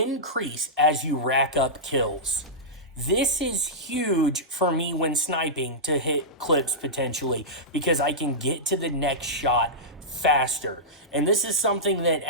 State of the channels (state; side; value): normal; both; correlation -0.12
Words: as you rack up kills. This is huge for me when sniping to hit clips potentially, because I can get to the next shot faster. And this is something that